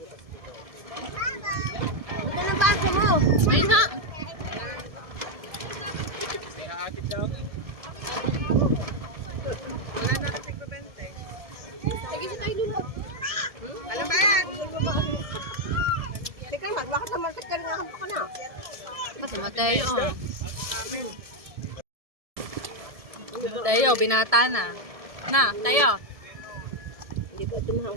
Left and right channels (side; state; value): left; late; 1.7 ms